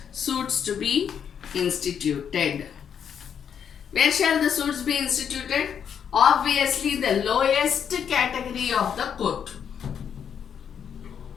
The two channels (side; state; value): right; quieter; 7.9 dB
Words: suits to be instituted. Where shall the suits be instituted? Obviously the lowest category of the court.